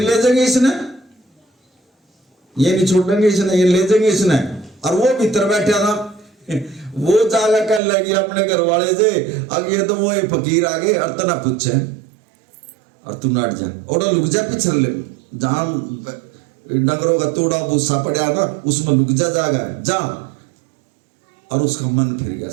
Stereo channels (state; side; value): drops out; left; at 7.8 s